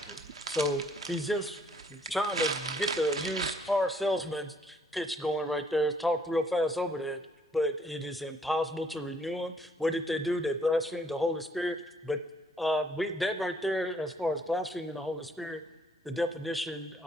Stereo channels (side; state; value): both; normal; correlation 0.65